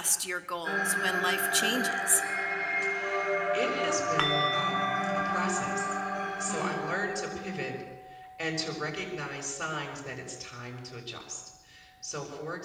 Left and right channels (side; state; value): both; identical; correlation 1.00